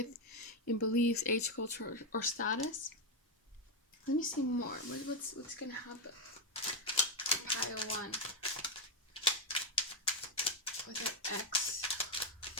in beliefs, age, culture, or status. Let me see more. What's gonna happen? Pile 1 with their ex,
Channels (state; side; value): normal; both; correlation 0.05